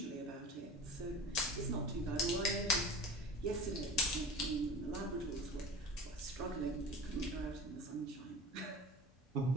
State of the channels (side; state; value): both; normal; correlation 0.35